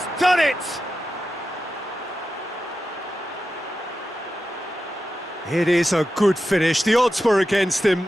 done it! It is a good finish. The odds were against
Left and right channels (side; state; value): both; normal; correlation 0.91